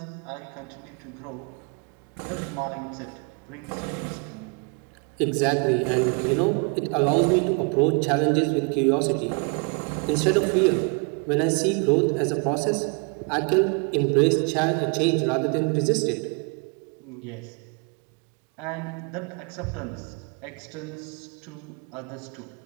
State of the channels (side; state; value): left; quieter; 35.4 dB